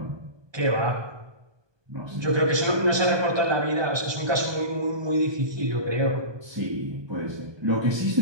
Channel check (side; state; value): left; late; 1.2 ms